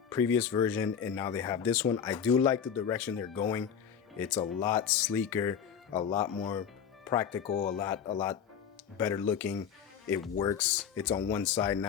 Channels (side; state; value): right; quieter; 7.7 dB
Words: previous version, and now they have this one. I do like the direction they're going. It's a lot sleeker, a lot more practical, a lot better looking. It works. It's on one side